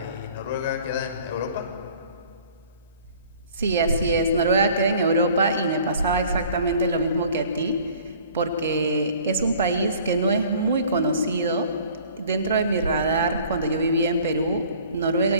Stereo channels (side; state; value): both; inverted; correlation -0.52